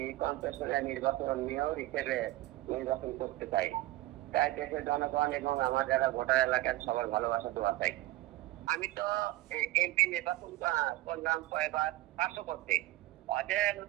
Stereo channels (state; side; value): quieter; left; 17.2 dB